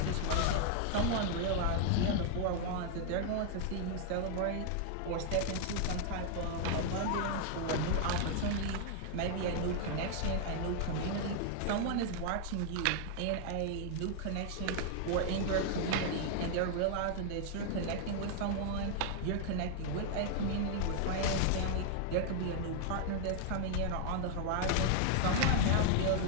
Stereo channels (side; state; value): both; different; correlation 0.00